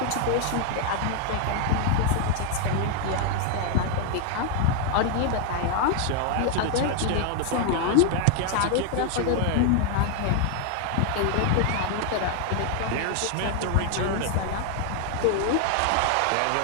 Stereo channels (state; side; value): different; both; correlation 0.00